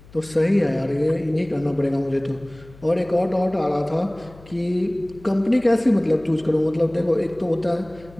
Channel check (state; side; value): noise; left; hum, 22 dB below the sound